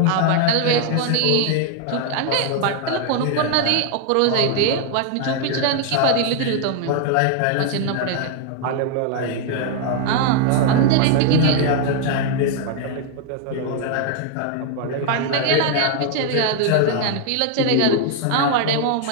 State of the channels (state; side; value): different; both; correlation 0.00